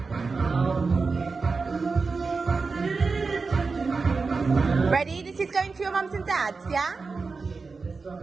Ready? This is going to your mums and dads, yeah?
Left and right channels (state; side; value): quieter; left; 4.4 dB